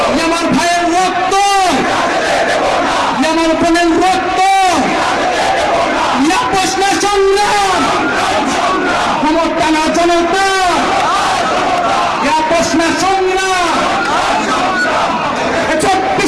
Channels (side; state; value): both; identical; correlation 1.00